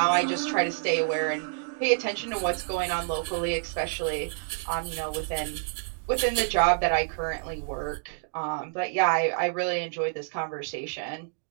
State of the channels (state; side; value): silent; left; digital silence